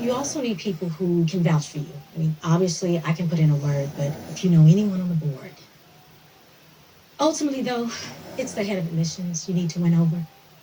You also need people who can vouch for you. I mean, obviously, I can put in a word, but if you know anyone on the board. Ultimately, though, it's the head of admissions you need to win over.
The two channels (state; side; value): identical; both; correlation 1.00